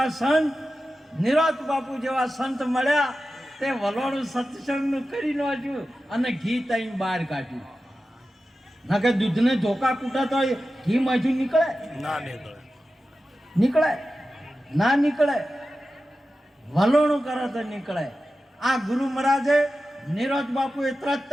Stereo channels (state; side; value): normal; both; correlation 0.93